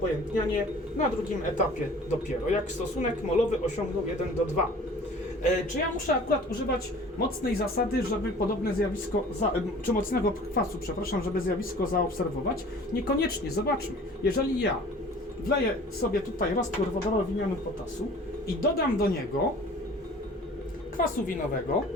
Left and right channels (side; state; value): both; normal; correlation 0.47